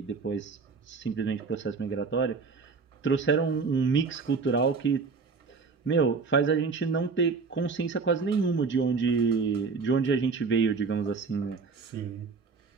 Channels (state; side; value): quieter; left; 4.8 dB